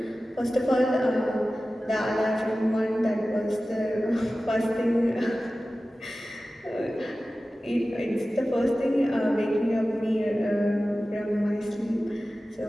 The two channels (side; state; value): both; normal; correlation 0.96